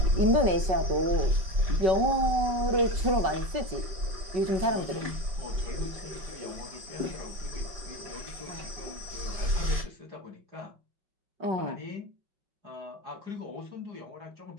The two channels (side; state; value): left; late; 5.3 ms